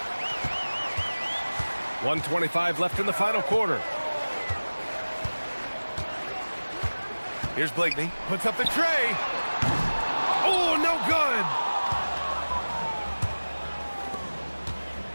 1:25 left in the final quarter. Here's Blakeney. Puts up the tray. Oh, no good.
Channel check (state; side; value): inverted; both; correlation -1.00